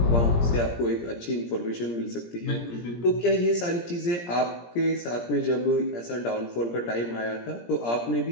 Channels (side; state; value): right; late; 17 ms